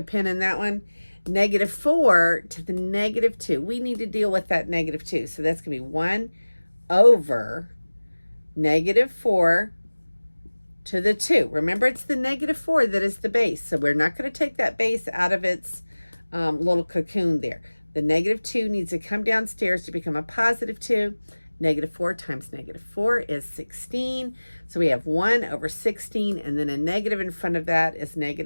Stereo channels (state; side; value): inverted; both; correlation -1.00